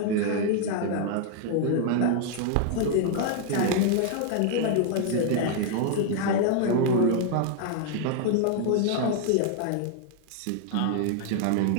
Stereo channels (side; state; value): both; different; correlation 0.00